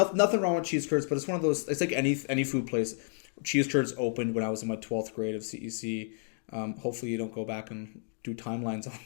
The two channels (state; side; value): silent; right; digital silence